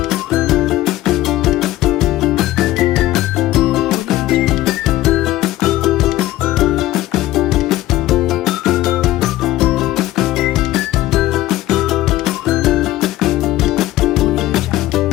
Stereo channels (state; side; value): quieter; right; 15.7 dB